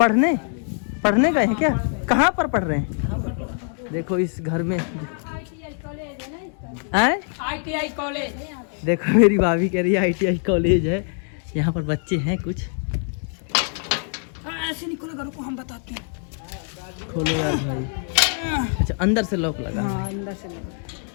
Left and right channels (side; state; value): right; silent; 56 dB below the other